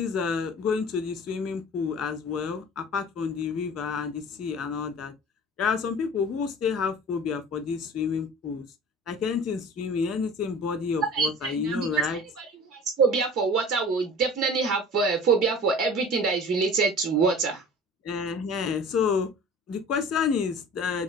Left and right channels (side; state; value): both; normal; correlation 0.42